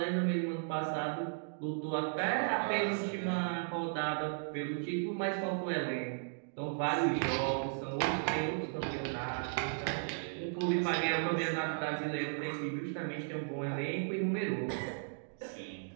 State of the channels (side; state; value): left; silent; digital silence